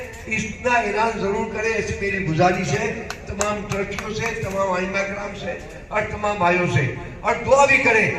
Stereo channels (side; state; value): both; identical; correlation 1.00